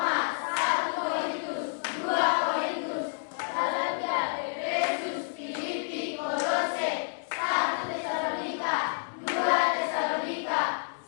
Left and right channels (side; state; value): right; silent; digital silence